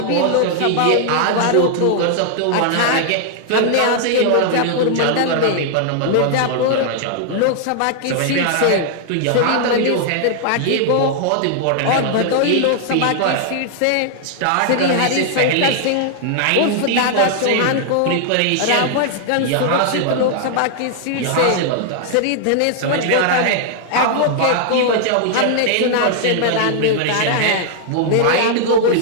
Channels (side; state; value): both; different; correlation 0.00